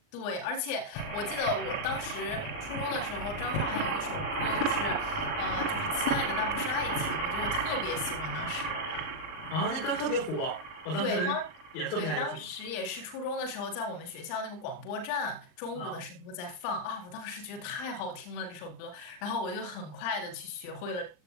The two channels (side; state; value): right; late; 39 ms